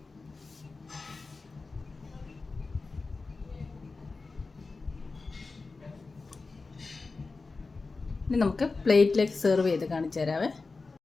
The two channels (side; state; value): right; quieter; 3.9 dB